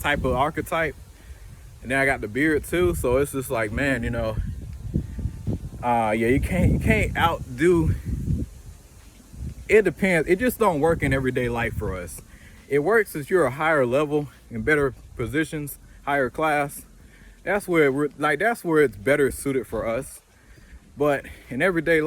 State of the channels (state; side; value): identical; both; correlation 1.00